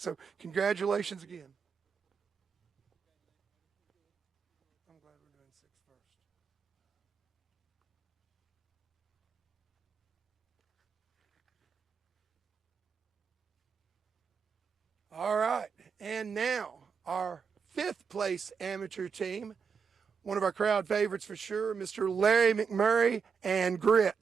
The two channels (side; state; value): left; quieter; 6.0 dB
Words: congratulations again. I'm glad we're doing 6 first. All right, and now our 5th place amateur team, one of our crowd favorites for sure, Mr. Larry McMurray and